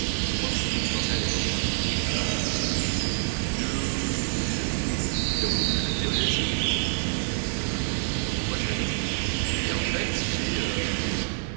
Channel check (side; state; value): left; silent; digital silence